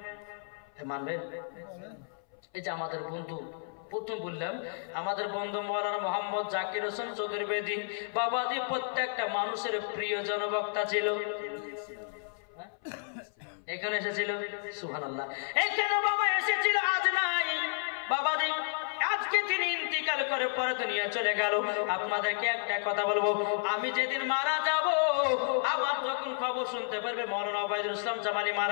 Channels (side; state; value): right; silent; 57 dB below the other